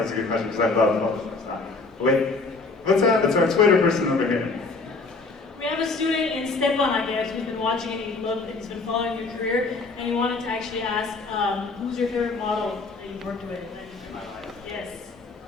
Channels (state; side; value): quieter; right; 3.8 dB